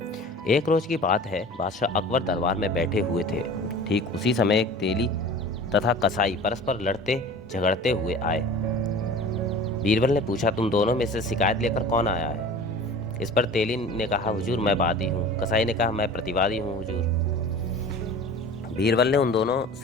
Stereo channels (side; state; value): both; normal; correlation 0.40